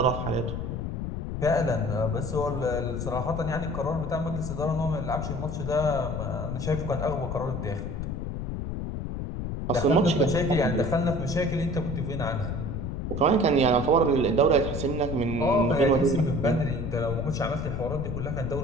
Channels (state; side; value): noise; left; rumble, 4 dB below the sound